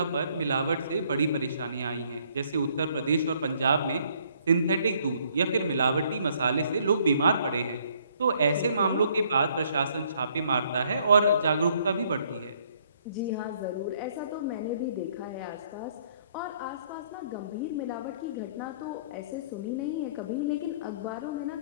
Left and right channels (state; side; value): inverted; both; correlation -0.64